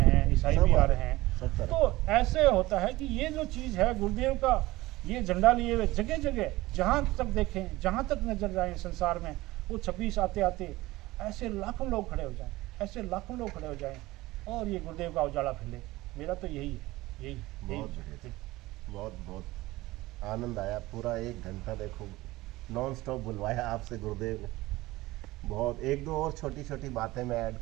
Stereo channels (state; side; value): quieter; left; 18.9 dB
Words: हैं, ईसाई भी आ रहे हैं। तो ऐसे होता है कि ये जो चीज़ है गुरुदेव का, ये झंडा लिए हुए जगह जगह, जहाँ तक देखें, जहाँ तक नजर जाए संसार में, वो 26 आते आते ऐसे लाखों लोग खड़े हो जाएं और ये गुरुदेव का उजाला फैले। मेरा तो यही है। बहुत आनंद आया। पूरा 1 घंटा देखो नॉन स्टॉप बुलवाया आपसे गुरुदेव ने। बहुत, 1-2 और छोटी बातें मैं ऐड